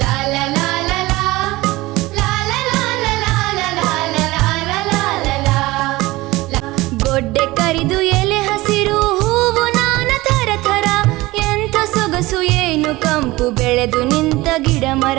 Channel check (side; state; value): left; quieter; 19.9 dB